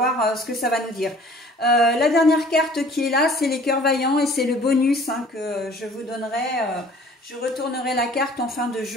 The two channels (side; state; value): both; normal; correlation 0.51